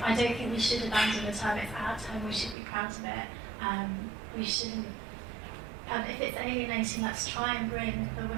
don't think we should abandon the term, it's our term, we should be proud of it. We shouldn't, if it's alienating, let's try and bring the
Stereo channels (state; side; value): drops out; left; at 2.6 s